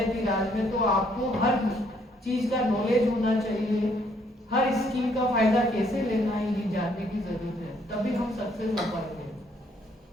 राज में, तो आपको हर चीज का नॉलेज होना चाहिए, हर स्कीम का फायदा कैसे लेना है ये जानने की जरूरत है, तभी हम सक्सेस हो पाएंगे।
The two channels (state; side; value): normal; both; correlation 0.68